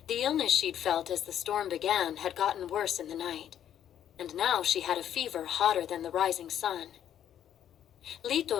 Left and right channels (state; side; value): quieter; right; 10.2 dB